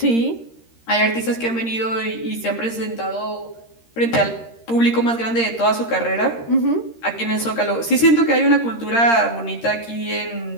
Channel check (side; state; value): right; late; 13 ms